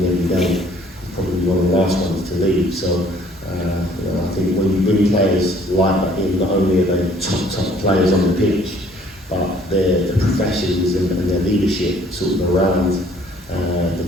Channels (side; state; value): both; normal; correlation 0.59